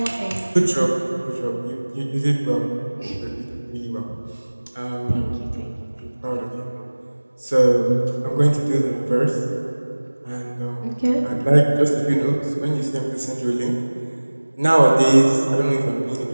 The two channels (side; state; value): both; inverted; correlation -1.00